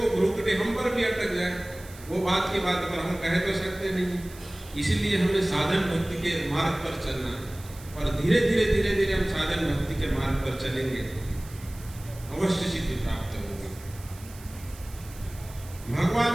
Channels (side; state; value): right; noise; hiss, 19 dB below the sound